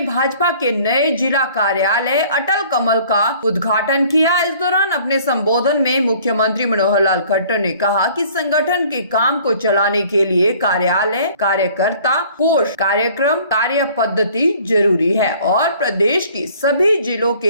भाजपा के नए जिला कार्यालय अटल कमल का उद्घाटन किया। इस दौरान अपने संबोधन में मुख्यमंत्री मनोहर लाल खट्टर ने कहा कि संगठन के काम को चलाने के लिए कार्यालय, कार्यकर्ता, कोष, कार्यक्रम, कार्य पद्धति जरूरी है और प्रदेश की सभी जिलों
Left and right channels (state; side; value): inverted; both; correlation -0.53